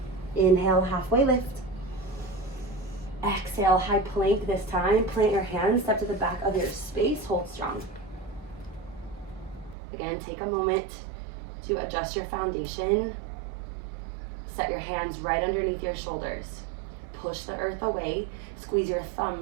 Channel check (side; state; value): left; drops out; at 9.8 s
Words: Inhale, halfway lift. Exhale, high plank this time. Plant your hands, step to the back of your space, hold strong. Again, take a moment to adjust your foundation. Set your hands right underneath your shoulders. Push the earth away. Squeeze your